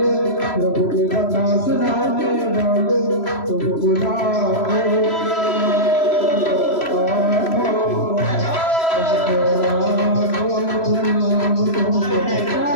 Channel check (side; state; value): right; late; 3.0 ms